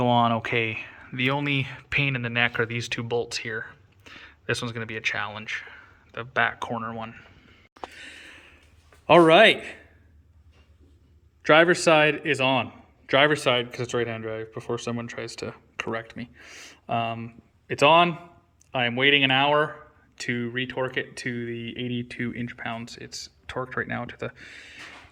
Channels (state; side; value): identical; both; correlation 1.00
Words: go on okay. The only pain in the neck are these 2 bolts here. This one's going to be a challenge, the back corner one. All right. Driver's side is on. Driver's side, because it's right-hand drive, before someone tries to correct me. It's on. I am waiting an hour to retorque it to the 82 inch-pounds. It's torqued right now to the